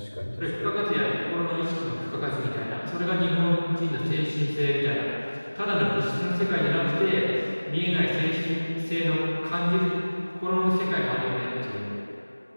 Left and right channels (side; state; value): both; inverted; correlation -1.00